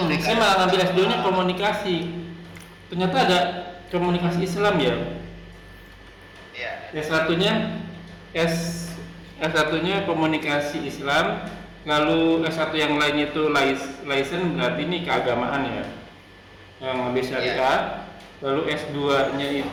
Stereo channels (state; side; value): identical; both; correlation 1.00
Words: Saya malah ngambil S2-nya komunikasi. Ternyata ada komunikasi Islam ya. Iya. S1-nya komunikasi Islam, lalu S1 yang lainnya itu license, berarti ini keagamaan ya. Yang lebih syariah. Lalu S2-nya